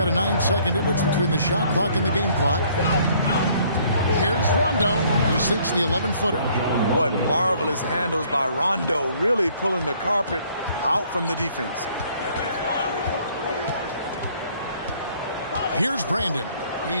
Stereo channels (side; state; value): both; inverted; correlation -0.61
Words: a 9-second difference between the shot clock and the game clock. Here's Rondo. He sinks the 11-footer. What marvelous handles by Rondo, really pulling the carpet out from the defense. Here's Brandon.